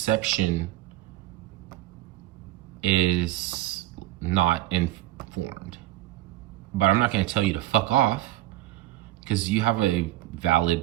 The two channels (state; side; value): quieter; left; 15.3 dB